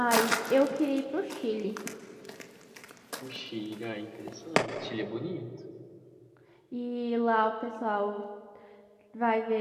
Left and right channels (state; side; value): identical; both; correlation 1.00